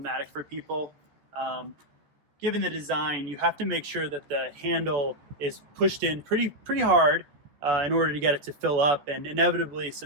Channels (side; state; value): left; late; 14 ms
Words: for people. Given the design, you have to make sure that the handle is pushed in pretty hard in order to get it to fill up, and inevitably